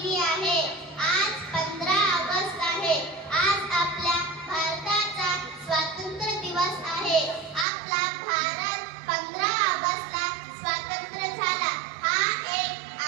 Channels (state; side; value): drops out; left; at 7.7 s